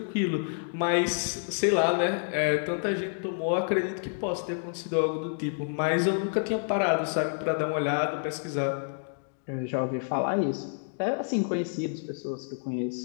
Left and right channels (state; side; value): silent; right; digital silence